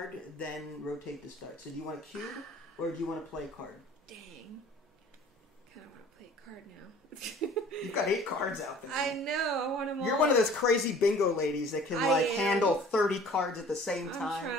then rotate to start. So do you want a cube, or do you want to play a card? Dang. Kind of want to play a card now. You've got 8 cards out there. I know. I want them all. You're one of those crazy bingo ladies that can handle 30 cards at the same time. I'm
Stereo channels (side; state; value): both; normal; correlation 0.49